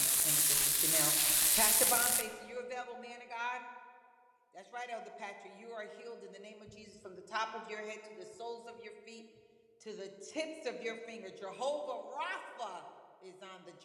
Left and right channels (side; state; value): both; identical; correlation 1.00